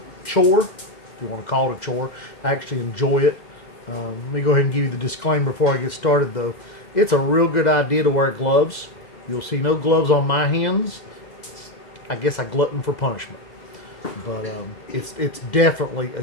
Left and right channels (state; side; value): late; right; 2.0 ms